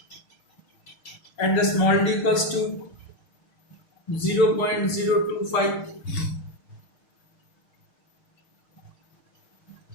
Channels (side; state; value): right; late; 6.5 ms